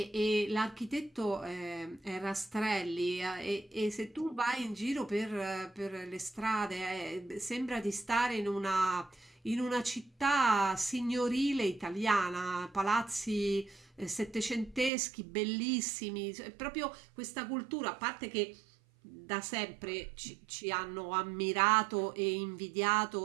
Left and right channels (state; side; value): drops out; left; at 14.9 s